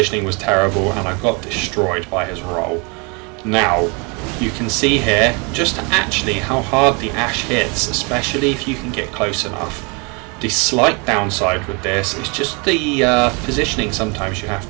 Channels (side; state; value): left; quieter; 31.5 dB